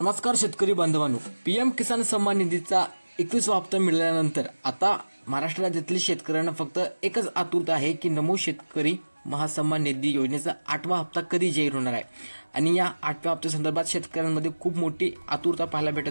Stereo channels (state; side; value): inverted; both; correlation -1.00